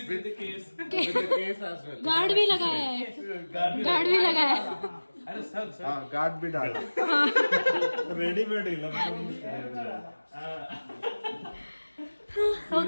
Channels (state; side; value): inverted; both; correlation -1.00